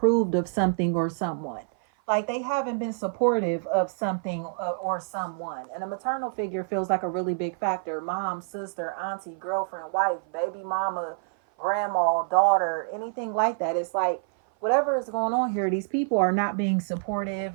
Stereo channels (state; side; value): silent; left; 56 dB below the other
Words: of something or someone, like they haven't been supportive of something or someone. And a maternal figure feels like a really big factor. Mom, sister, auntie, girlfriend, wife, baby mama, grandma, daughter, anything like that. It's like whatever is going on here, these people are not being